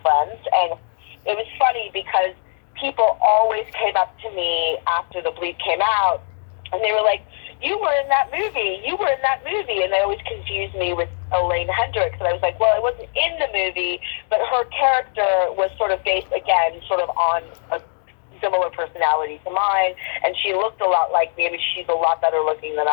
And it was funny because people always came up to me after the Bleep came out, and they were like, "You were in that movie. You were in that movie." And they always confused me with Elaine Hendricks. And I was like, well, I wasn't in the movie, but her character was sort of based, again, sort of on a similar personality to mine, and she looked a lot like me. I mean, she's a lot better looking than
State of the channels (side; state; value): right; silent; digital silence